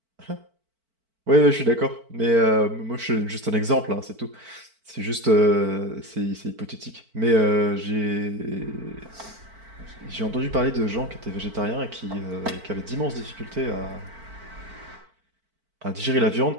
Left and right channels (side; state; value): left; late; 4.5 ms